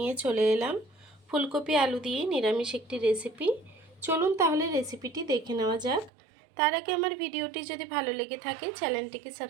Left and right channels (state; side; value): drops out; left; at 6.1 s